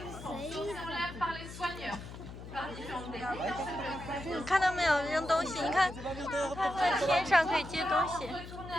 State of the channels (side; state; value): left; noise; hum, 12 dB below the sound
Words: sautés en l'air par les soigneurs. Par différentes techniques. 你看到没有？扔东西，你看，它在天上可以接东西。